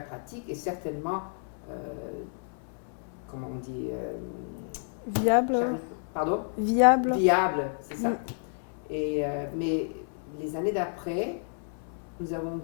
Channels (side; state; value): right; silent; 58 dB below the other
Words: et certainement, comment on dit, viable. Pardon? Viable, c'est ça. Mais les années d'après, nous avons